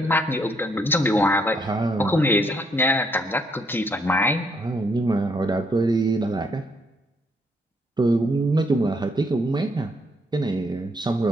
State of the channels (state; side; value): normal; both; correlation 0.72